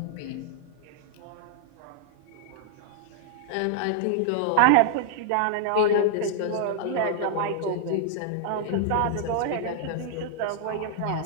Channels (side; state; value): both; different; correlation -0.01